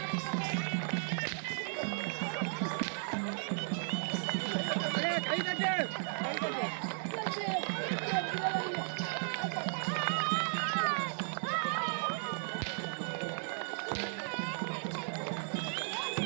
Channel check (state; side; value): silent; left; 54 dB below the other